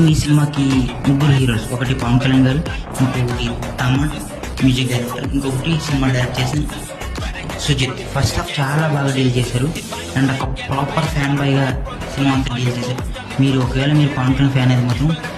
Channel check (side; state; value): both; identical; correlation 1.00